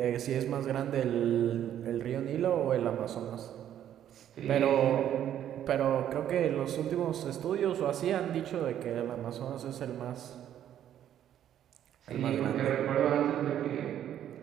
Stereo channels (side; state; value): left; quieter; 10.7 dB